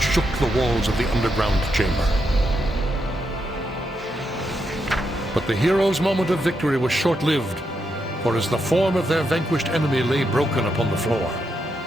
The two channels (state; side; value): normal; both; correlation 0.82